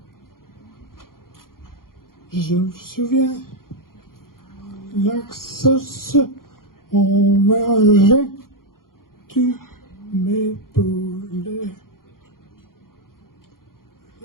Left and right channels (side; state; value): right; late; 0.92 ms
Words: Je me souviens, l'axos, on mangeait, tu m'épaulais.